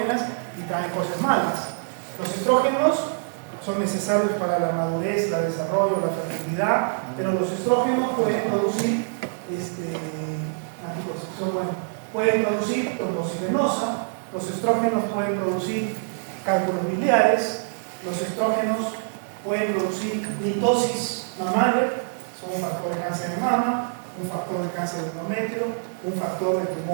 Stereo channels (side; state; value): left; silent; digital silence